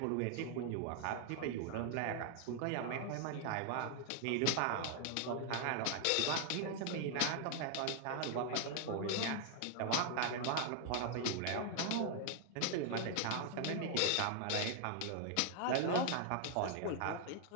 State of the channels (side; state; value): both; different; correlation 0.00